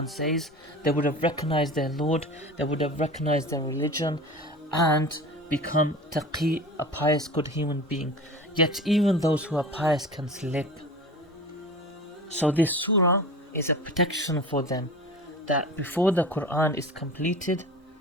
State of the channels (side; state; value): both; normal; correlation 0.35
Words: says. They would have recognized their Lord, they would have recognized their religion, and become taqi, a pious, good human being. Yet even those who are pious can slip. So this surah is a protection for them, that before the Quran is completed,